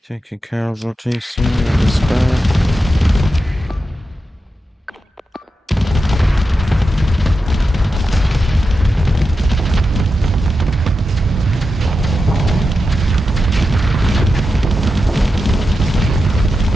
Taking casualties here is bad.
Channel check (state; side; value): normal; both; correlation 0.89